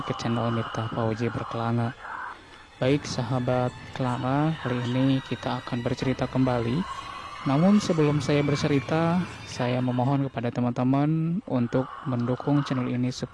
ke channel Miftah Fauzi Berkelana. Baik sahabat Kelana, kali ini kita akan bercerita kembali. Namun sebelum saya bercerita, saya memohon kepada teman-teman untuk mendukung channel ini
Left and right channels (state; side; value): identical; both; correlation 1.00